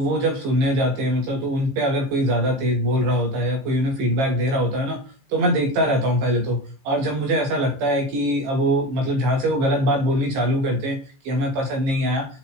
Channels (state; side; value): late; left; 15 ms